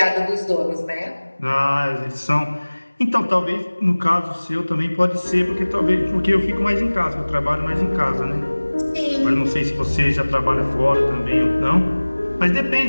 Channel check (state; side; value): inverted; both; correlation -1.00